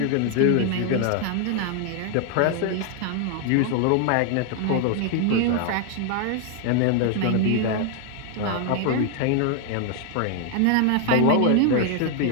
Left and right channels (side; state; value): both; different; correlation 0.00